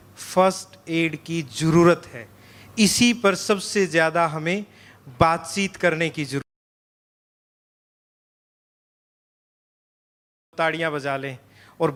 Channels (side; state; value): both; identical; correlation 1.00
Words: फर्स्ट एड की जरूरत है। इसी पर सबसे ज्यादा हमें बातचीत करने की जरूरत। ताड़ियां बजा लें और